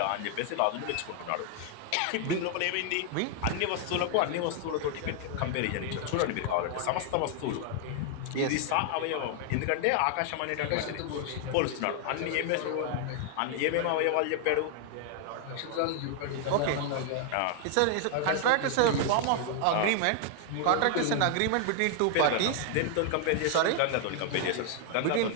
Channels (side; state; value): both; different; correlation 0.00